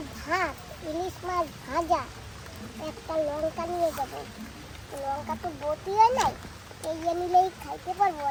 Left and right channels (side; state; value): both; identical; correlation 1.00